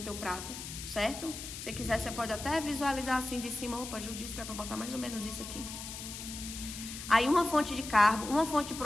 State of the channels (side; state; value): left; noise; hiss, 9 dB below the sound